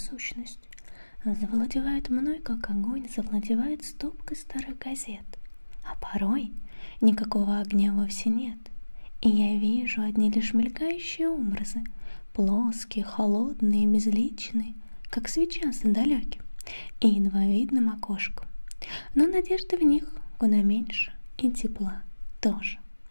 завладевает мной, как огонь завладевает стопкой старых газет, а порой Никакого огня вовсе нет, и я вижу одни лишь мелькающие образы, плоские, холодные, безличные, как свеча за далеким и едва видным окошком. Но надежды в них куда меньше, и тепла тоже.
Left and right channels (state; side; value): inverted; both; correlation -1.00